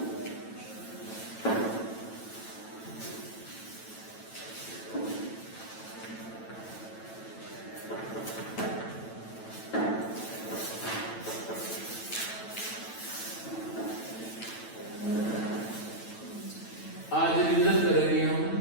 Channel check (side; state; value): right; late; 9.1 ms